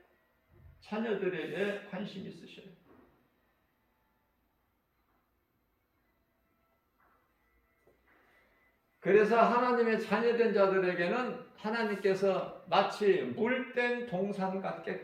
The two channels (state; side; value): identical; both; correlation 1.00